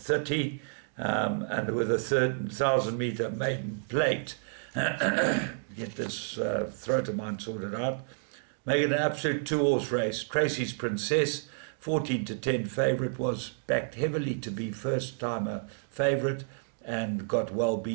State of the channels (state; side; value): silent; left; digital silence